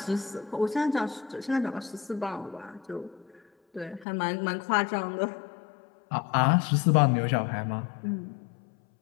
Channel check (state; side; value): drops out; right; at 4.0 s